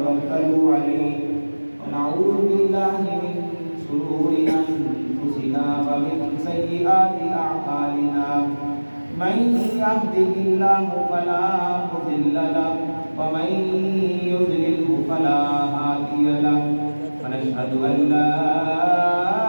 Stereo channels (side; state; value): both; inverted; correlation -1.00